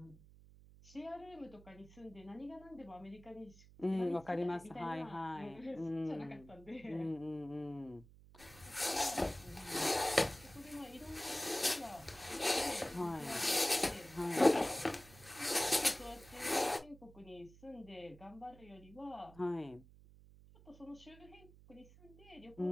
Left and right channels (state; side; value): noise; right; hum, 21 dB below the sound